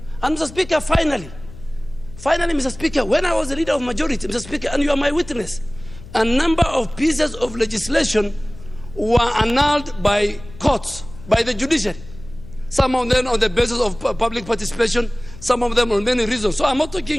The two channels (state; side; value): noise; left; hum, 17 dB below the sound